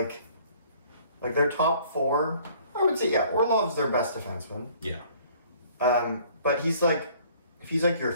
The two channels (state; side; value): inverted; both; correlation -0.56